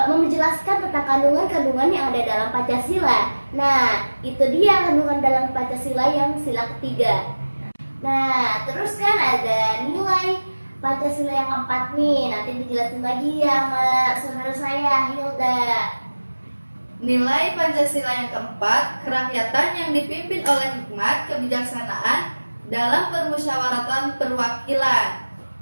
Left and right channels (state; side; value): inverted; both; correlation -1.00